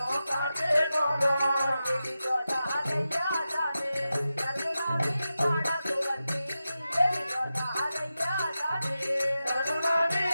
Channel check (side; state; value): both; inverted; correlation -0.92